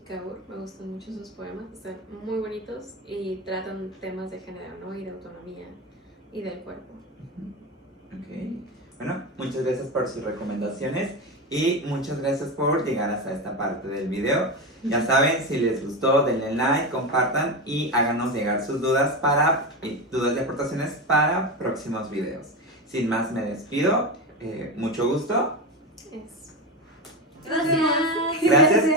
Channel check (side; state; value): both; normal; correlation 0.18